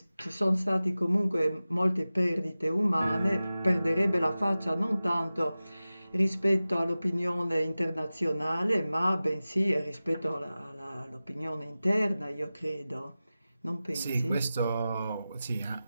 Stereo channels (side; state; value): both; inverted; correlation -0.96